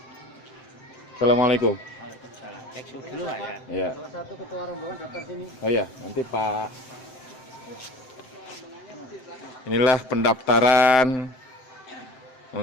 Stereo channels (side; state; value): right; late; 7.7 ms